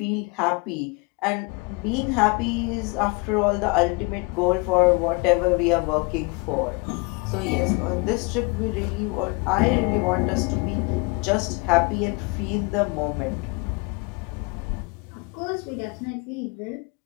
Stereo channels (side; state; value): right; quieter; 29.2 dB